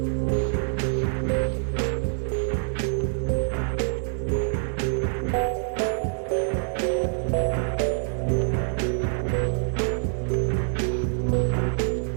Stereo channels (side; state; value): left; silent; digital silence